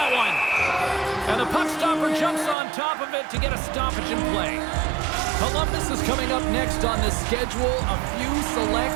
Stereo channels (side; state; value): left; drops out; at 2.6 s